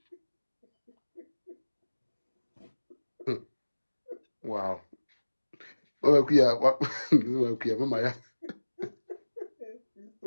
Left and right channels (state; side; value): inverted; both; correlation -1.00